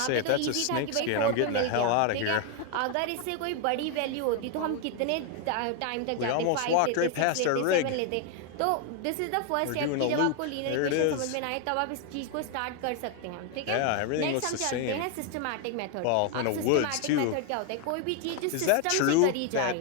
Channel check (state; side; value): different; both; correlation 0.01